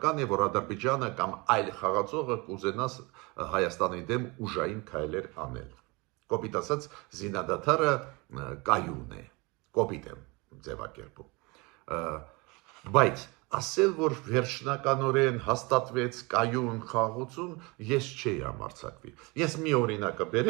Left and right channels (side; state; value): left; quieter; 26.4 dB